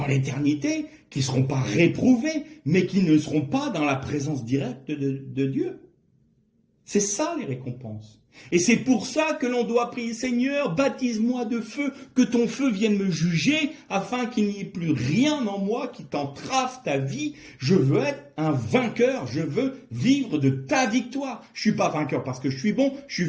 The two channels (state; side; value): identical; both; correlation 1.00